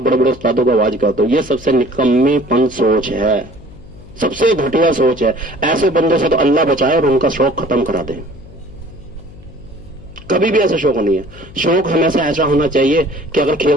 बड़े बड़े उस्तादों को आवाज करते हो। ये सबसे निकम्मीपन सोच है, सबसे घटिया सोच है। ऐसे बंदों से तो अल्लाह बचाए और उनका शौक खत्म करा दे। कभी भी ऐसा शौक नहीं है। शौक हमेशा ऐसा होना चाहिए कि अगर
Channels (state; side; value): noise; left; hum, 20 dB below the sound